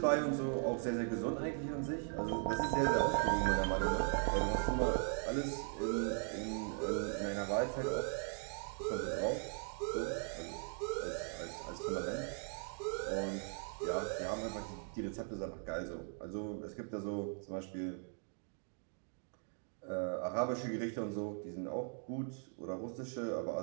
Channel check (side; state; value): left; silent; 52 dB below the other